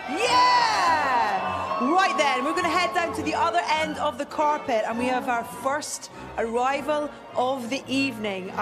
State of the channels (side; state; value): both; identical; correlation 1.00